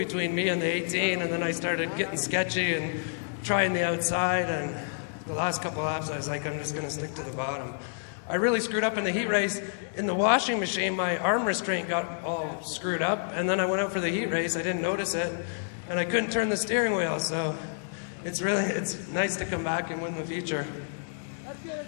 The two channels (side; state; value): right; silent; digital silence